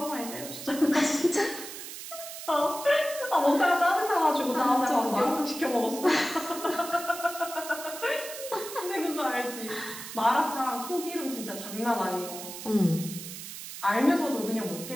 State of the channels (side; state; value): right; noise; hiss, 10 dB below the sound